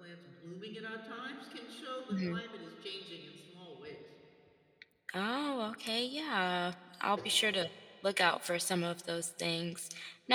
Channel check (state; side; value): identical; both; correlation 1.00